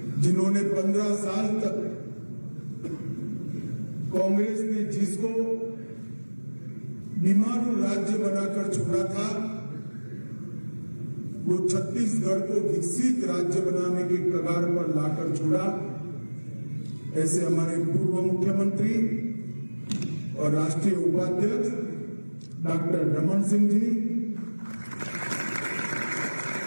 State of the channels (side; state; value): both; inverted; correlation -1.00